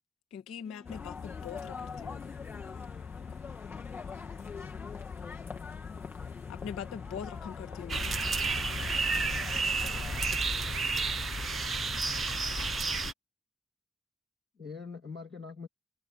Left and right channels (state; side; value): normal; both; correlation 0.74